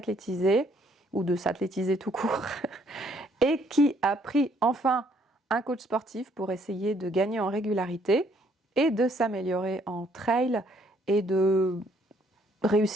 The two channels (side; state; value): both; normal; correlation 0.66